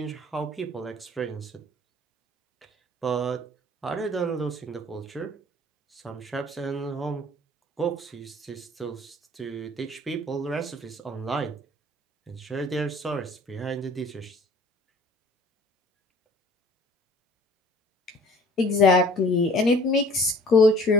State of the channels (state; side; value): normal; both; correlation 0.51